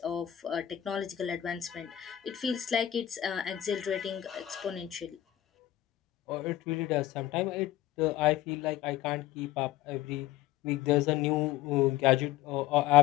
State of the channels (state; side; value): quieter; right; 13.1 dB